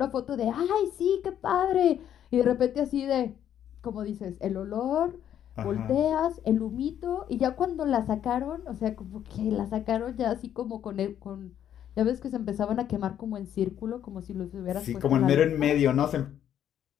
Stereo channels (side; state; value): right; quieter; 10.2 dB